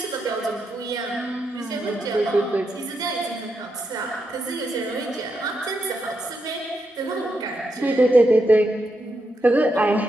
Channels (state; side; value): normal; both; correlation 0.83